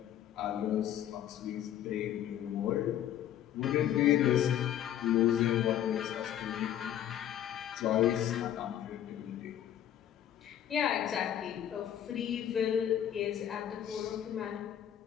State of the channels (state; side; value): quieter; right; 11.0 dB